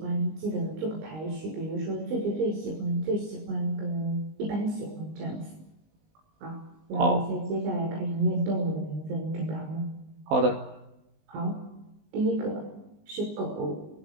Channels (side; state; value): left; late; 19 ms